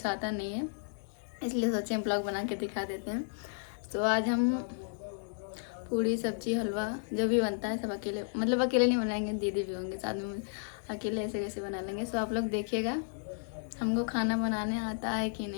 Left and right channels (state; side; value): silent; right; digital silence